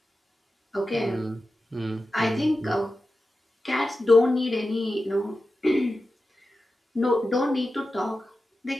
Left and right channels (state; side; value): normal; both; correlation 0.92